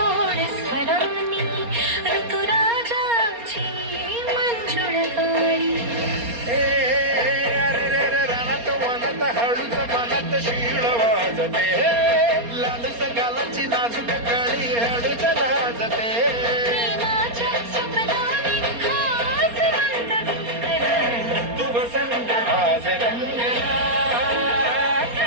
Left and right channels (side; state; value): left; late; 4.3 ms